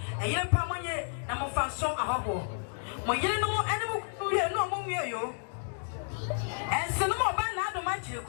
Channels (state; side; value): silent; right; 57 dB below the other